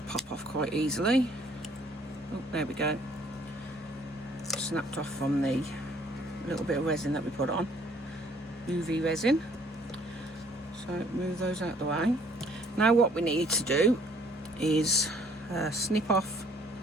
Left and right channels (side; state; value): both; normal; correlation 0.61